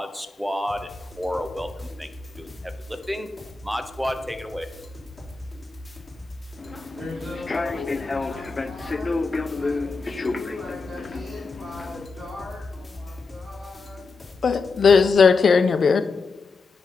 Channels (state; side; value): quieter; right; 4.3 dB